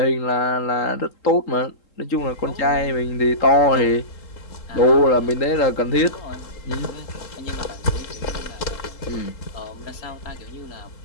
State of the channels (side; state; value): right; late; 3.7 ms